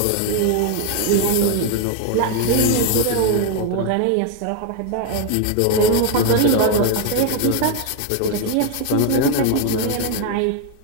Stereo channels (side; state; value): both; different; correlation 0.01